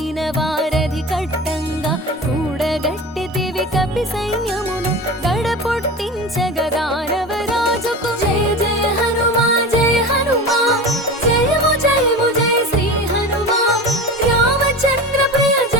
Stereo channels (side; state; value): both; normal; correlation 0.30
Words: వారధి కట్టంగా కూడగట్టితివి కపి సైన్యమును గడపొట్టించగా దానవరాజుకు. జయ జయ హనుమా జయ హనుమా జయము జయము జయ శ్రీ హనుమా రామచంద్ర ప్రియ